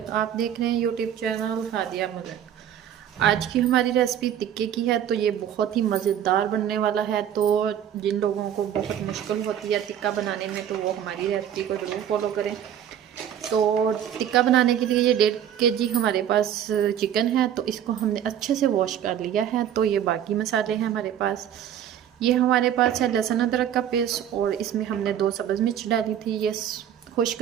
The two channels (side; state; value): left; quieter; 10.0 dB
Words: आप देख रहे हैं यूट्यूब चैनल हादिया मलिक। आज की हमारी रेसिपी टिक्के की है, तो ये बहुत ही मज़ेदार बनने वाला है। तो जिन लोगों को बहुत मुश्किल होती है टिक्का बनाने में, तो वो हमारी रेसिपी को ज़रूर फॉलो करें। तो टिक्का बनाने के लिए ये 1.5 kg हमारे पास चिकन है, तो इसको हमने अच्छे से वॉश कर लिया है। तो ये बाकी मसाले हैं हमारे पास। ये हमारे पास है लहसुन अदरक का पेस्ट, और इसमें हमने 2 सब्ज़ मिर्च डाली थी, ये खुश्क